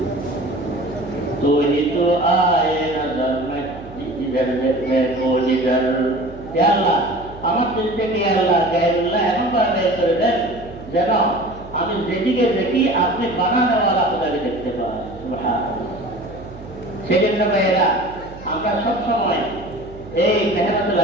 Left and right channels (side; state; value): right; noise; hum, 17 dB below the sound